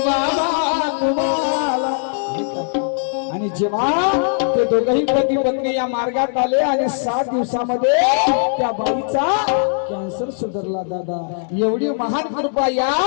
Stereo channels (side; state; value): right; silent; 66 dB below the other